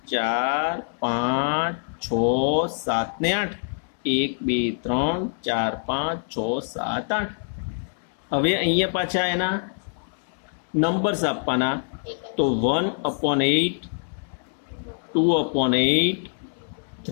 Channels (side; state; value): right; silent; 62 dB below the other